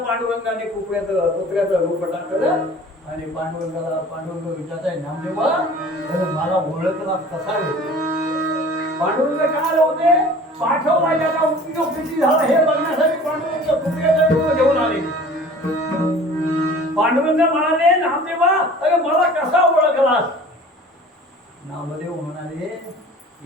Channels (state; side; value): normal; both; correlation 0.45